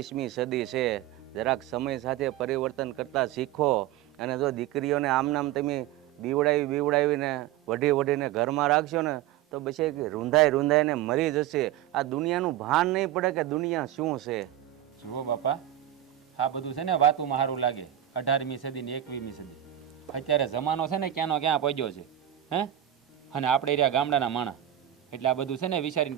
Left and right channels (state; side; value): quieter; left; 12.2 dB